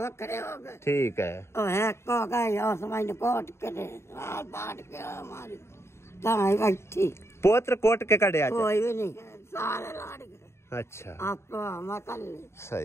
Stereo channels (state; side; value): late; right; 0.13 ms